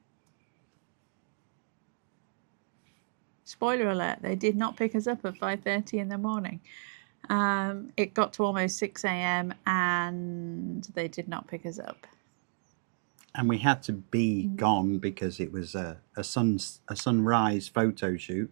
Spoiler alert, they did not pick us up at 5:30 in the morning. It got to almost 6 a.m. and they did not pick us up. And we had to be gone because it was a sunrise photo shoot.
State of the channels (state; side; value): silent; left; 56 dB below the other